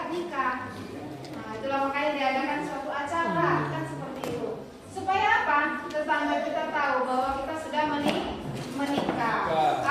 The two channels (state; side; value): identical; both; correlation 1.00